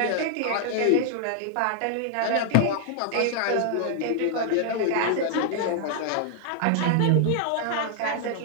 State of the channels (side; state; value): both; different; correlation 0.00